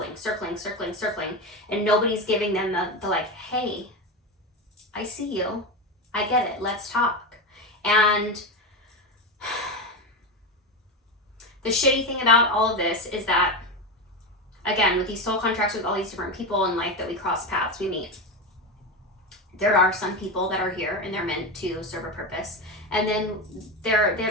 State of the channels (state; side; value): normal; both; correlation 0.18